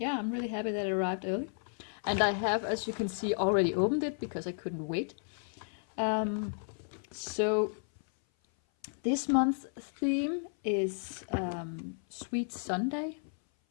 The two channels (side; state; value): right; silent; 56 dB below the other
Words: I'm really happy that it arrived early. And I have, as you can see, already opened it because I couldn't wait. So this month's theme is Sweet Sundae.